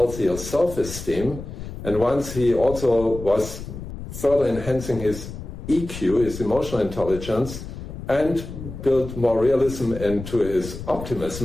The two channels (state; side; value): noise; left; rumble, 10 dB below the sound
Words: self-esteem, and once he also was further enhancing his EQ, his emotional intelligence, and built more realism into his